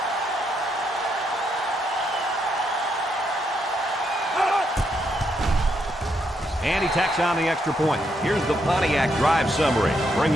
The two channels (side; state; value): both; normal; correlation 0.78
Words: And he tacks on the extra point. Here's the Pontiac drive summary,